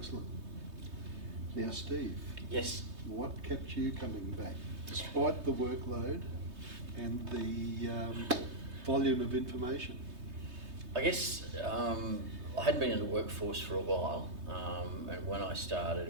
Now, Steve. Yes. What kept you coming back, despite the workload and the volume of information? I guess I hadn't been in the workforce for a while, and when I started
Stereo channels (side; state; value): left; late; 3.2 ms